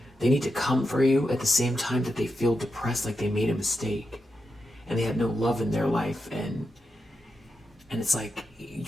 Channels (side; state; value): both; normal; correlation 0.87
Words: they need to come for you at the same time that they feel depressed, like they made a mistake and they have no love in their life, and it's like